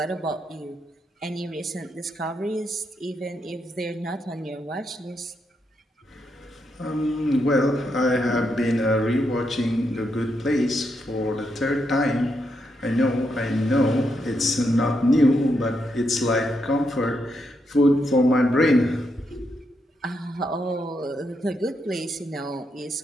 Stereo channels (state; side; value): normal; both; correlation 0.81